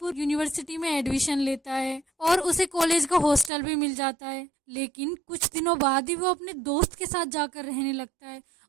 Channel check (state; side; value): drops out; left; at 3.5 s